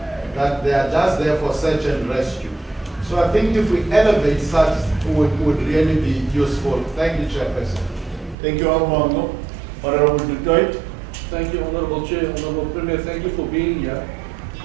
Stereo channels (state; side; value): drops out; left; at 8.3 s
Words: that they are just there for search and rescue. So I think if we elevate such, would really be useful. Thank you, Chairperson. Thank you, Honorable Detroit. Thank you, Honorable Chair. Honorable Premier, thank you for being here.